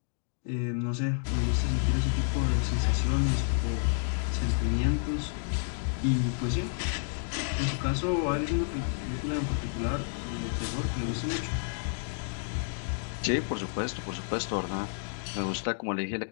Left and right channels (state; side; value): silent; right; digital silence